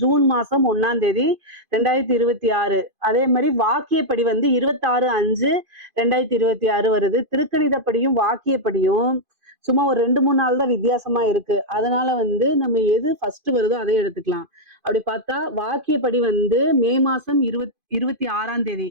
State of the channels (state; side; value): late; left; 2.5 ms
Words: ஜூன் மாசம் 1ஆம் தேதி 2026. அதே மாதிரி வாக்கியப்படி 26/5/2026 வருது. திருக்கணிதப்படியும் வாக்கியப்படியும் சும்மா ஒரு 2-3 நாள் தான் வித்தியாசமா இருக்கு. அதனால நம்ம எது ஃபர்ஸ்ட் வருதோ அதை எடுத்துக்கலாம். அப்படி பார்த்தா வாக்கியப்படி மே மாசம் 26ஆம் தேதி